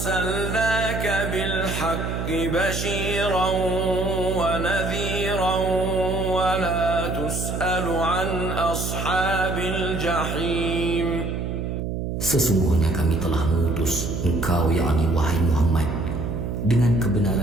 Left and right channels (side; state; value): right; noise; hum, 3 dB below the sound